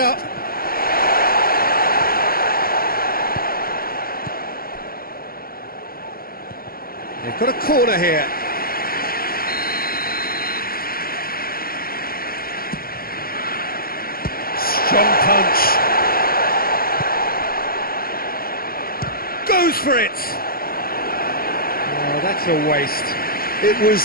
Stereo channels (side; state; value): right; late; 0.43 ms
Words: They've got a corner here. Strong punch. Goes for it. Oh, that's a waste. It